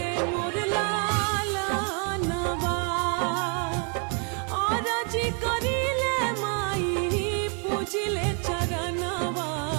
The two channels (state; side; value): quieter; left; 39.1 dB